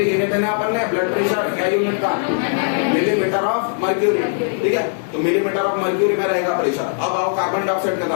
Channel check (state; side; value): silent; right; digital silence